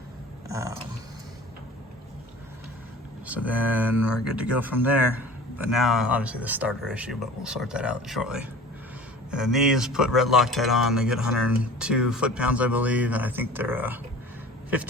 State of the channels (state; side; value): normal; both; correlation 0.42